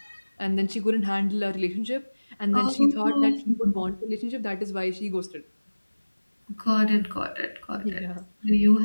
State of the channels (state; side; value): inverted; both; correlation -1.00